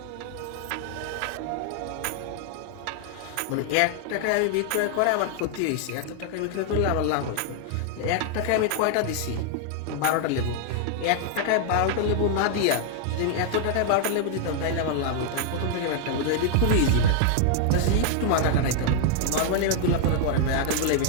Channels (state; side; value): different; both; correlation 0.00